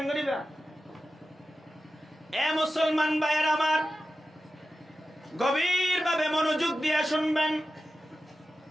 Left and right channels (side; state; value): both; normal; correlation 0.93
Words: করিবা এ মুসলমান ভাইয়ের আমার গভীর ভাবে মনোযোগ দিয়ে শুনবেন